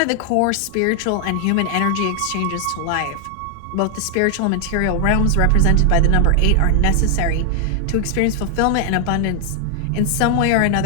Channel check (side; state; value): both; different; correlation 0.00